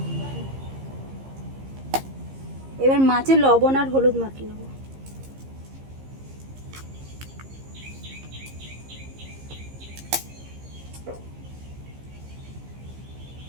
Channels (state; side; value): late; left; 15 ms